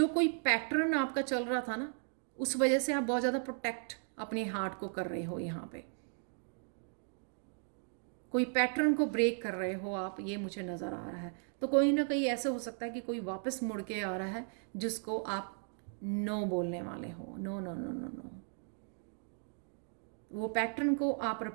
कोई पैटर्न आपका चल रहा था ना, उस वजह से आप बहुत ज़्यादा प्रोटेक्ट अपने हार्ट को कर रहे हो। यहाँ पे कोई पैटर्न को ब्रेक कर रहे हो आप, ये मुझे नज़र आ रहा है। तो कोई ना कहीं ऐसे हो सकता है कि कोई वापस मुड़ के आ रहा है जिसको आप नो बोलने वाले हो। No no no no no, वो पैटर्न को आप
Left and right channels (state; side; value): silent; left; 54 dB below the other